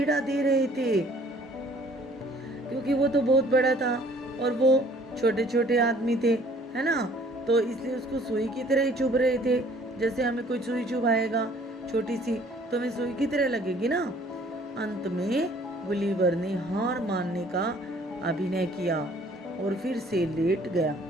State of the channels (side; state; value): both; normal; correlation 0.56